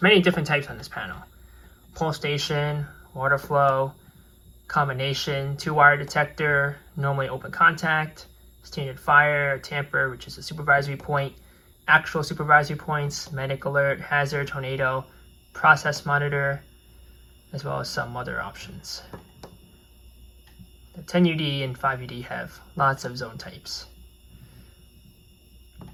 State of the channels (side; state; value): both; identical; correlation 1.00